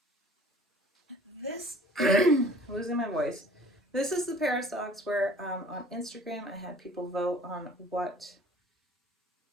This, losing my voice. This is the pair of socks where on Instagram I had people vote on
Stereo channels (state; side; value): normal; both; correlation 0.51